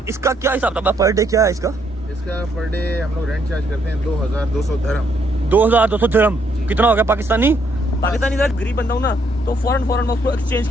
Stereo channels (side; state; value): both; normal; correlation 0.72